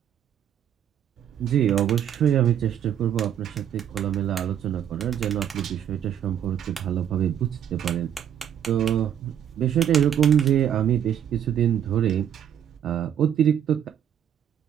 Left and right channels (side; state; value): left; quieter; 9.5 dB